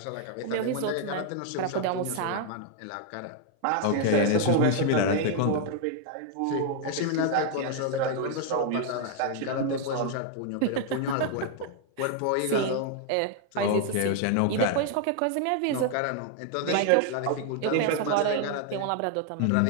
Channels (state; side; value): different; both; correlation 0.00